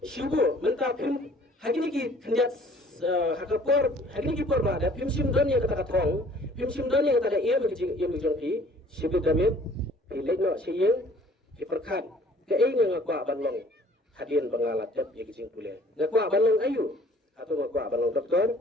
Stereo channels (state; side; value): normal; both; correlation 0.55